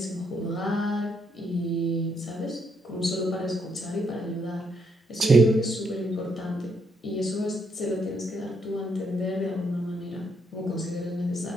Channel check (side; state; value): both; normal; correlation 0.75